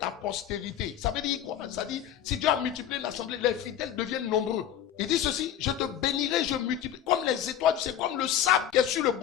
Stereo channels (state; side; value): quieter; right; 10.3 dB